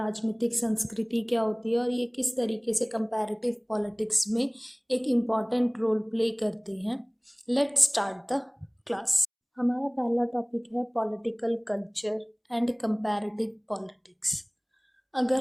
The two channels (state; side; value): identical; both; correlation 1.00